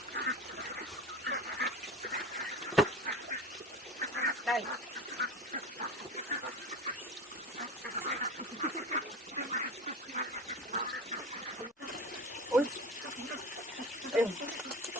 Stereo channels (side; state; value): both; normal; correlation 0.32